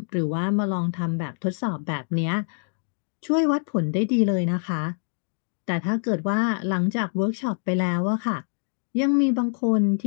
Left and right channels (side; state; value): right; silent; digital silence